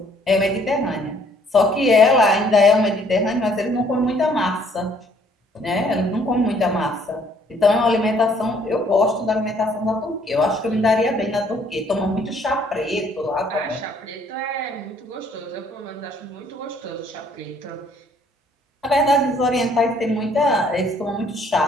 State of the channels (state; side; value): normal; both; correlation 0.62